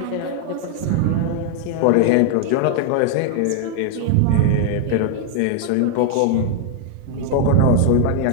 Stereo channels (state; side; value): different; both; correlation 0.00